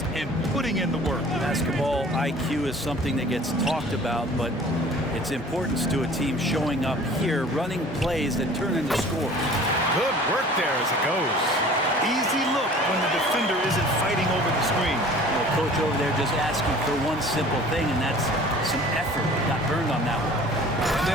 and putting in the work. Basketball IQ is something that gets talked about, but its importance to a team showing up here, running plays that turn into scores. Good work there as it goes. Easy look when the defender isn't fighting over the screen. The coach over there just asking for one simple thing, and that's some effort. Got burned on that one. And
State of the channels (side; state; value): both; normal; correlation 0.47